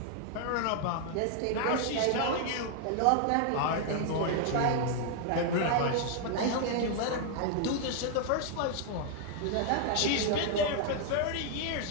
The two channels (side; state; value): both; different; correlation 0.00